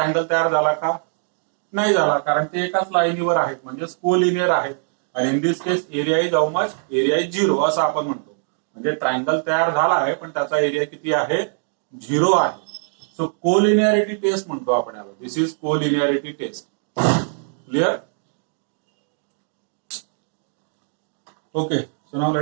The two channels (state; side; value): silent; left; digital silence